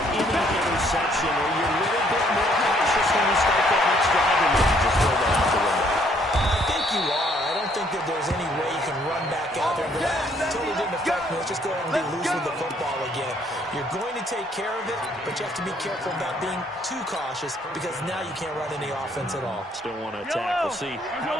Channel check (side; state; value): both; normal; correlation 0.65